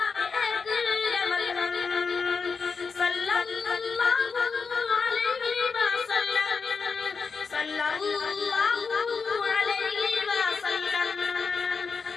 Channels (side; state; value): right; quieter; 5.2 dB